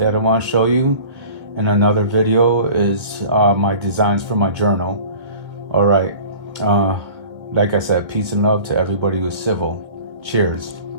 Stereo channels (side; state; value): left; late; 1.7 ms